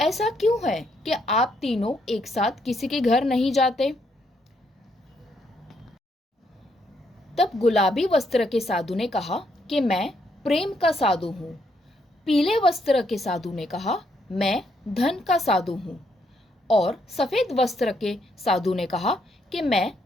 क्यों है कि आप तीनों एक साथ किसी के घर नहीं जाते? तब गुलाबी वस्त्र के साधु ने कहा कि मैं प्रेम का साधु हूँ। पीले वस्त्र के साधु ने कहा, मैं धन का साधु हूँ। और सफेद वस्त्र के साधु ने कहा कि मैं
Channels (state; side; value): normal; both; correlation 0.74